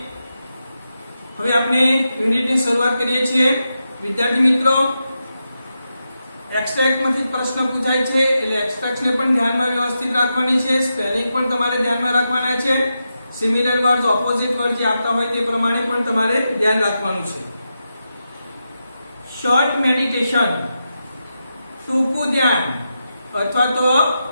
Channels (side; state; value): both; inverted; correlation -0.88